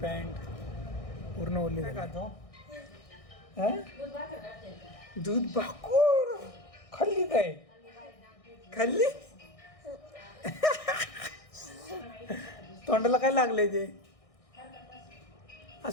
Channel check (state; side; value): late; right; 1.6 ms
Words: पॅन्ट पूर्ण ओले झाले. दूध भाकूर खाल्ली काय? खाल्ली? तोंडाला काय लागले ते?